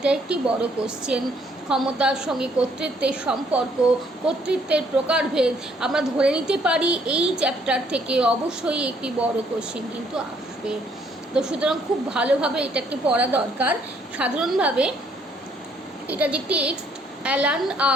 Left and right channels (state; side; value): normal; both; correlation 0.66